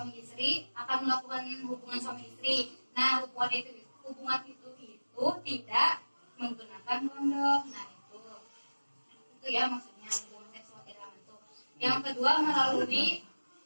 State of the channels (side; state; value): both; inverted; correlation -1.00